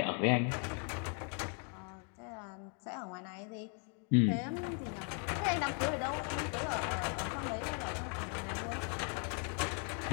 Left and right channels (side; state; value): right; quieter; 39.8 dB